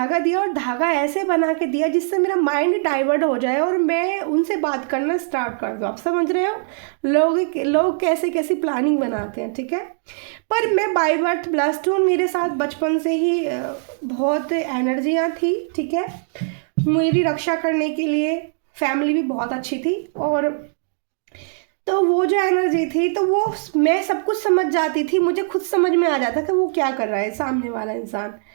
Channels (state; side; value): silent; left; 65 dB below the other